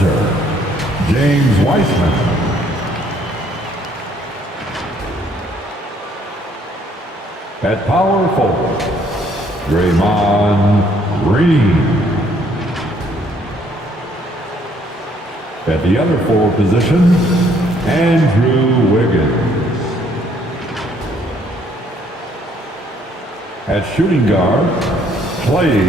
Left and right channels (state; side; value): normal; both; correlation 0.65